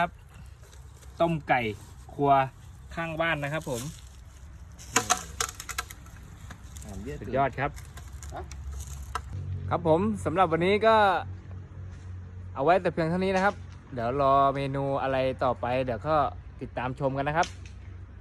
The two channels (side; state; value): both; identical; correlation 1.00